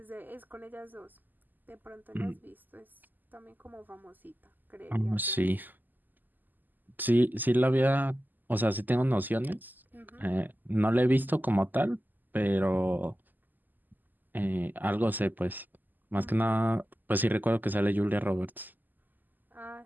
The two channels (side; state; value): left; late; 0.087 ms